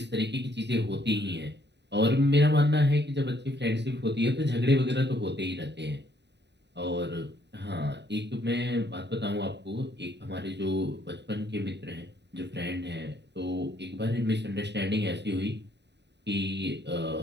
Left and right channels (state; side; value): late; left; 0.50 ms